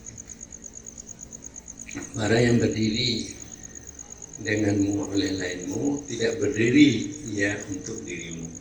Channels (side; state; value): both; identical; correlation 1.00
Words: Para yang berdiri denganmu oleh lainmu tidak berdiri ia untuk dirimu.